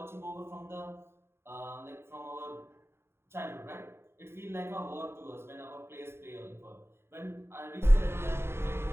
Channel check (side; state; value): left; late; 0.12 ms